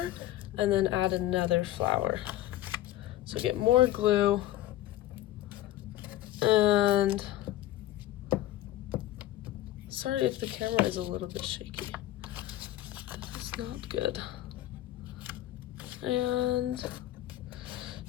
and then add another flower. So get more glue, and sorry if the camera is a little bit shaky. It's not good. And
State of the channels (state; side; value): quieter; right; 14.4 dB